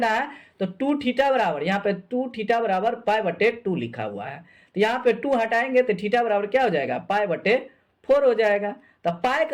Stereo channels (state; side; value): identical; both; correlation 1.00